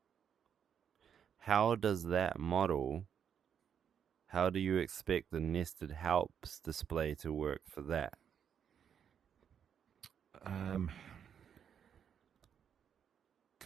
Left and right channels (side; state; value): left; quieter; 8.1 dB